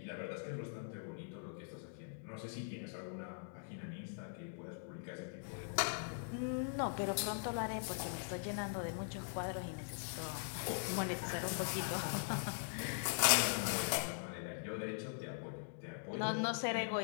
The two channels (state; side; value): silent; right; digital silence